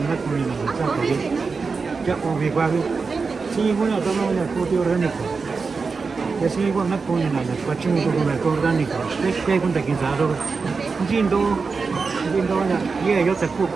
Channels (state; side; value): quieter; left; 4.7 dB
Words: comida, ¿sabes? Ya comí cuál. Sí, bueno, todo lo que orgánico. Que sí, bueno, comida, la cuachín con orgánico. ¿Qué cuenta quién sabe? Jindo ya, y yo te